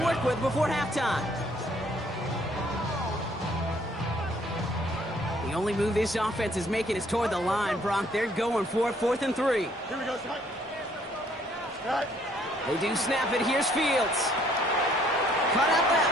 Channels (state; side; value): normal; both; correlation 0.63